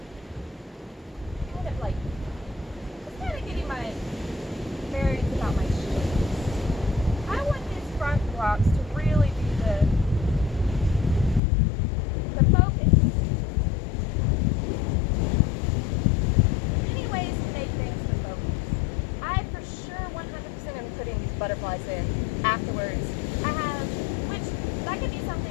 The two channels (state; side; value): drops out; right; at 11.4 s